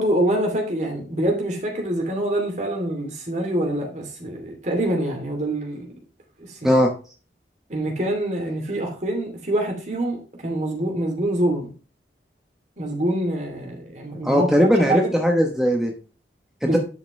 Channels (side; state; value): both; normal; correlation 0.69